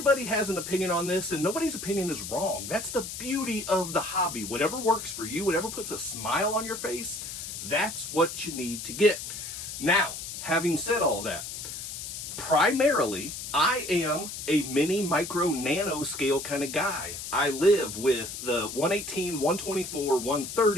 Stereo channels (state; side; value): noise; left; hiss, 8 dB below the sound